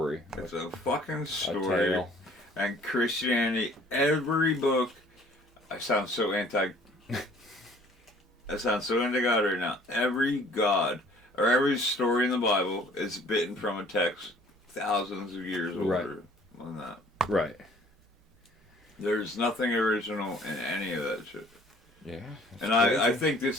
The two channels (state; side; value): normal; both; correlation 0.55